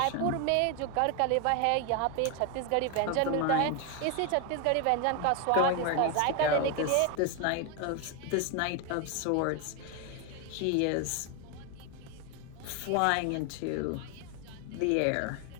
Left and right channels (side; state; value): both; different; correlation 0.01